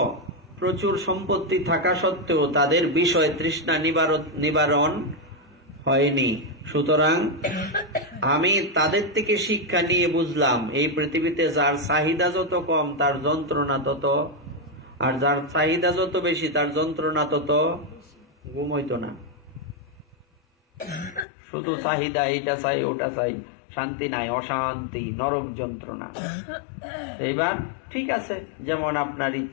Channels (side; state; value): right; drops out; at 21.2 s